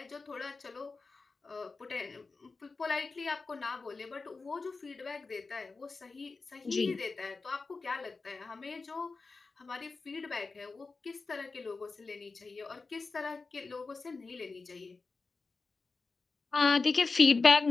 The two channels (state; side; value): quieter; right; 4.1 dB